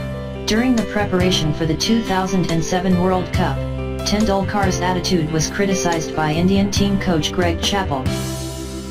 During the preparation for the 2007 World Cup, Tendulkar's attitude was criticised by Indian team coach Greg Chappell.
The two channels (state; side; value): identical; both; correlation 1.00